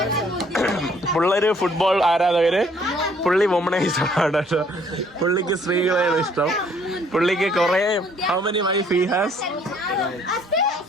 പിള്ളേര് ഫുട്ബോൾ ആരാധകര്. പുള്ളി വുമണൈസാണ് കേട്ടോ. പുള്ളിക്ക് സ്ത്രീകളെയാണ് ഇഷ്ടം. പുള്ളിക്ക് കുറെ how many wife he has?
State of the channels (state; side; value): normal; both; correlation 0.62